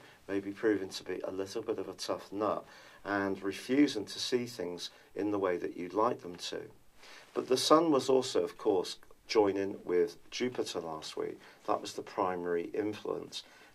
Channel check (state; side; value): identical; both; correlation 1.00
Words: may be proving to be a little bit of a tough nut and refusing to see things in the way that you'd like them to. But the Sun was also, of course, joining with Jupiter last week. That was the primary influence.